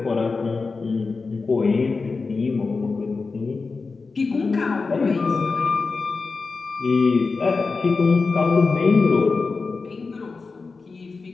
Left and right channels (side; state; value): right; quieter; 4.3 dB